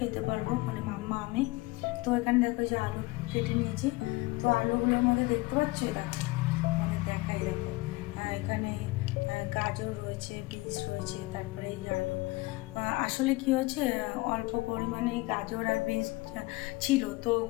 পারবো, মানে মাম্মা আমি। তো এখানে দেখো যে আলু কেটে নিয়েছি, তো আলুগুলোর মধ্যে দেখতে পাচ্ছ, দেখো দেখাই, দেখো এখানে গাজর রয়েছে, বিনস রয়েছে, তারপরে এই আলু। আসলে কি হয়েছে, অল্প পরিমাণে গাজর আর বিনস ছিল, তো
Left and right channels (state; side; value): quieter; right; 22.1 dB